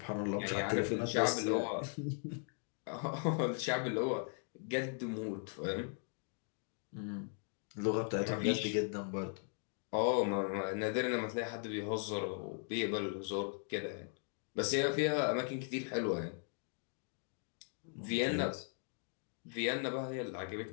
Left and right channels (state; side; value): silent; right; 52 dB below the other